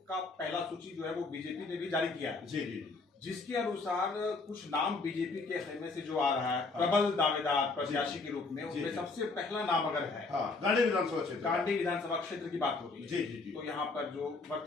का पहला सूची जो है वो बीजेपी ने भी जारी किया है। जी जी, जिसके अनुसार कुछ नाम बीजेपी के खेमे से जो आ रहा है प्रबल दावेदार प्रत्याशी के रूप में, उसमें सबसे पहला नाम अगर है गांडे विधानसभा क्षेत्र, गांडी विधानसभा क्षेत्र की बात हो रही है। जी जी जी। तो यहाँ पर जो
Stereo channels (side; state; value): right; quieter; 3.8 dB